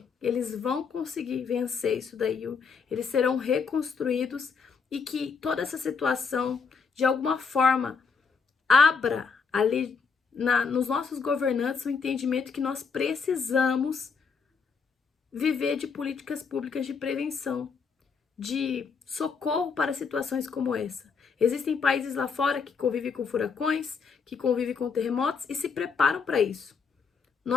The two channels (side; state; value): right; quieter; 5.6 dB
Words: eles vão conseguir vencer isso daí, eles serão reconstruídos e que toda essa situação, de alguma forma, abra ali nos nossos governantes o entendimento que nós precisamos viver de políticas públicas de prevenção, de socorro para situações como essa. Existem países lá fora que convivem com furacões, que convivem com terremotos e se preparam para isso.